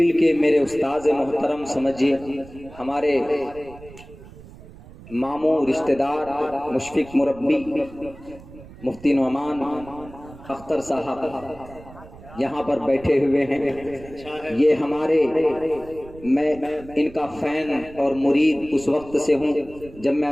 کے میرے استاذ محترم سمجھیے، ہمارے ماموں رشتہ دار مشفق مربی مفتی نعمان اختر صاحب یہاں پر بیٹھے ہوئے ہیں۔ یہ ہمارے، میں ان کا فین اور مرید اس وقت سے ہوں جب میں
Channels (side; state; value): right; noise; rumble, 19 dB below the sound